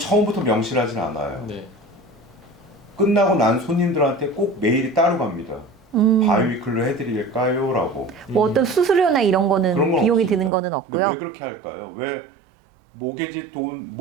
명시하진 않아요. 네. 끝나고 난 손님들한테 꼭 메일이 따로 갑니다. 바이위클로 해드릴까요? 라고. 뭐 어떤 수수료나 이런 거는 그런 건 비용이 없습니다. 드는 거는 근데 없고요. 왜 그렇게 할까요? 왜 모게지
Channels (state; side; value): drops out; left; at 10.5 s